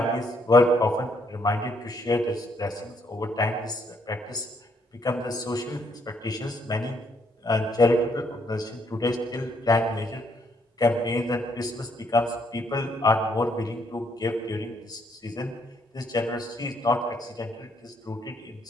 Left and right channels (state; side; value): normal; both; correlation 0.71